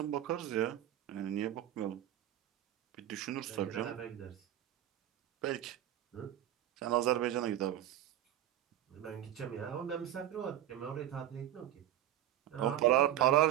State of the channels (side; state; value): left; quieter; 12.4 dB